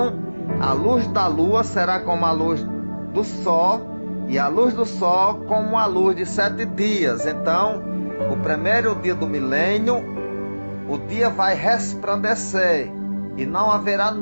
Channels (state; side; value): inverted; both; correlation -1.00